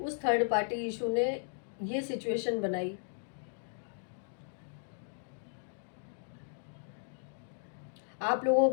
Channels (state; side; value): silent; right; digital silence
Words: थर्ड पार्टी इशू ने ये सिचुएशन बनाई। आप लोगों